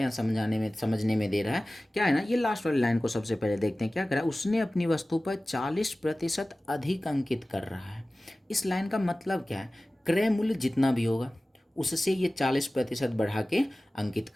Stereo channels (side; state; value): both; normal; correlation 0.97